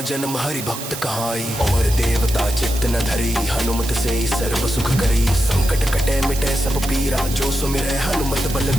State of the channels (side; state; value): right; noise; hiss, 9 dB below the sound